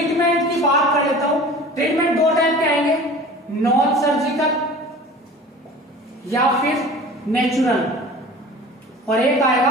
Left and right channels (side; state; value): both; normal; correlation 0.41